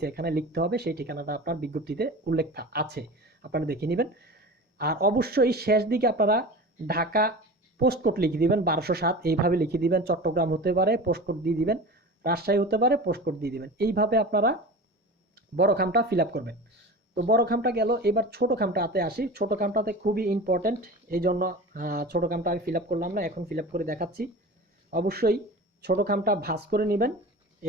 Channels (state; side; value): normal; both; correlation 0.33